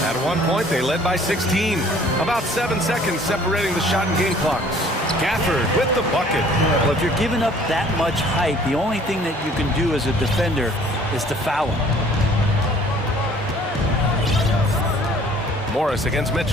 At one point, they led by 16. About 7 seconds separating the shot and game clocks. Gafford with the bucket. Well, if you're giving up that much height, the only thing that you can do as a defender is to foul him. Morris against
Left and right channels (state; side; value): normal; both; correlation 0.55